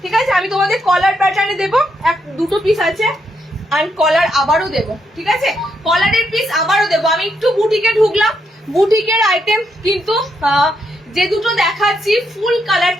ঠিক আছে, আমি তোমাদের কলার প্যাটার্নে দেবো, দুটো পিস আছে, আর কলার আবারও দেবো। ঠিক আছে, কলারের পিস আবারও দেবো। আমি একটু বুটিকে ঢুকলাম, বুটিকের আইটেম কিন্তু যে দুটো দেখাচ্ছি ফুল কালার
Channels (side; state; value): both; normal; correlation 0.79